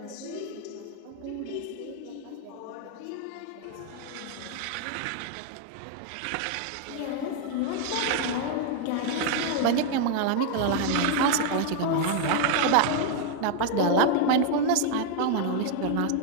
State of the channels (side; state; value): both; different; correlation 0.00